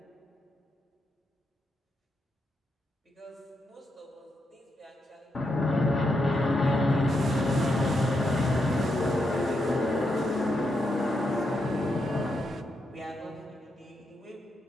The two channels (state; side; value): normal; both; correlation 0.82